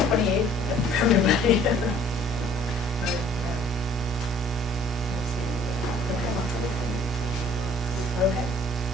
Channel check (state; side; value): normal; both; correlation 0.55